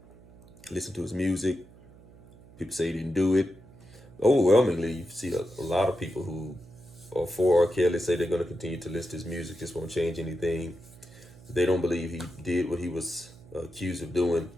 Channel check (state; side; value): noise; right; hum, 23 dB below the sound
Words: listen to his music. People say he didn't do it. Overwhelmingly, you see a lot of people who are for R. Kelly say they're going to continue to list his music, just won't change anything. They don't believe he did what he was accused of doing.